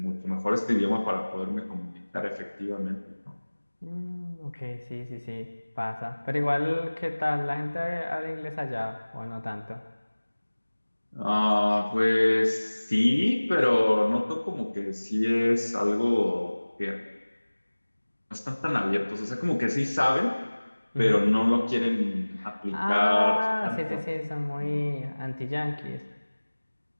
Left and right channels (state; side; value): inverted; both; correlation -1.00